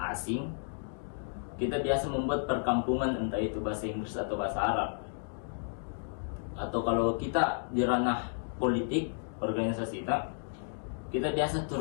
asing, kita biasa membuat perkampungan, entah itu bahasa Inggris atau bahasa Arab. Atau kalau kita di ranah politik, organisasi kita biasa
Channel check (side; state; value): right; silent; digital silence